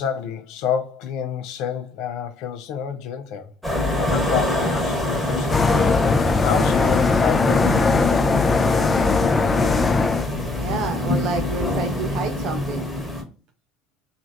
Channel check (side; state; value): right; quieter; 3.1 dB